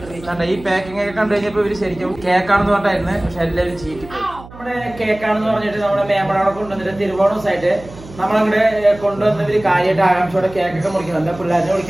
ഈ പാക്കിംഗ് ഒക്കെ കണ്ടു കഴിഞ്ഞപ്പോൾ ഇവര് ശരിക്കും കേക്കാണെന്ന് പറഞ്ഞായിരുന്നു. പക്ഷെ എല്ലാവരും ചീറ്റിപ്പോയി. നമ്മുടെ കേക്കാണെന്ന് പറഞ്ഞിട്ട് നമ്മുടെ മേമ്പടവിടെ കൊണ്ടുവന്നിട്ട് തിരുവോണസായിട്ട് നമ്മളങ്ങോട്ട് കൊണ്ടുവന്നവര് കാര്യമായിട്ട് ആകാംക്ഷയോടെ കേക്കൊക്കെ മുറിക്കുന്നുണ്ട്. പിള്ളേരെ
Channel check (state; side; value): noise; right; hum, 18 dB below the sound